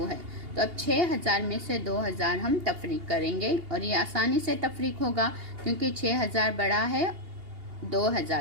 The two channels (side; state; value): left; late; 2.8 ms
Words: है, तो अब 6000 में से 2000 हम तफरीक करेंगे और ये आसानी से तफरीक होगा क्योंकि 6000 बड़ा है